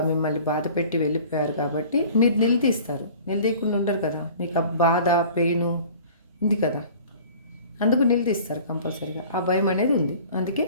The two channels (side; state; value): both; inverted; correlation -0.46